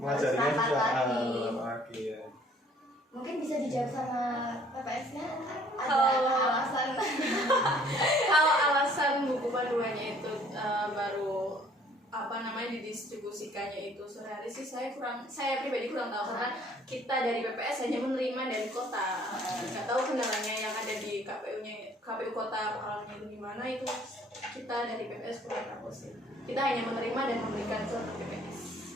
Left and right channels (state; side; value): normal; both; correlation 0.58